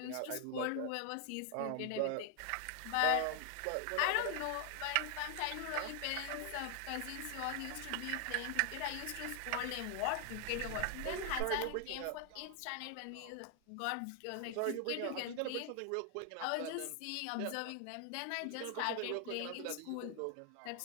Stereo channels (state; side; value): different; both; correlation 0.00